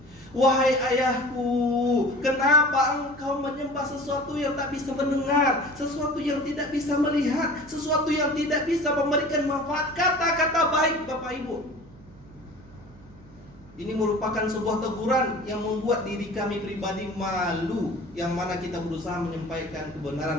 Wahai ayahku, kenapa engkau menyembah sesuatu yang tak bisa mendengar, sesuatu yang tidak bisa melihat, sesuatu yang tidak bisa memberikan manfaat? Kata-kata baik Bapak Ibu. Ini merupakan sebuah teguran yang membuat diri kami pribadi malu, yang mana kita berusaha menyampaikan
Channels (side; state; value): right; noise; hum, 23 dB below the sound